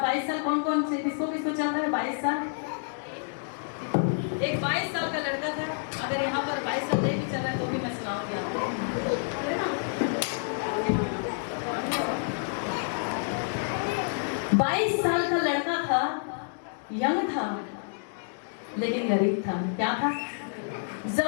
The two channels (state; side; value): silent; right; digital silence